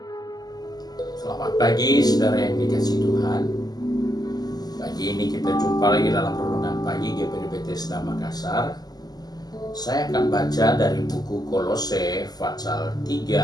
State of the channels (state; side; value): late; right; 0.19 ms